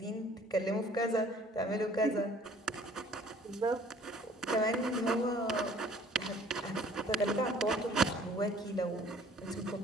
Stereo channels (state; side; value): normal; both; correlation 0.54